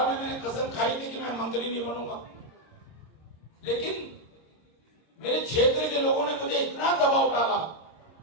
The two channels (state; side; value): late; right; 26 ms